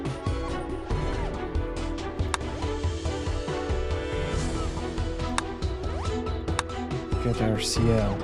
Get our CL.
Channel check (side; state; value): both; identical; correlation 1.00